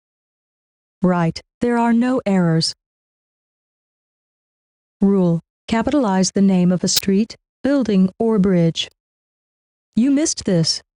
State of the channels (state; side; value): identical; both; correlation 1.00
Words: Right, there are no errors. Rule: capitalize the name of a street, building, or bridge. You missed this.